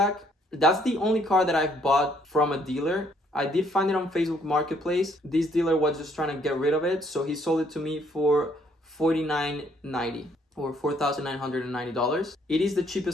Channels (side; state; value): both; normal; correlation 0.66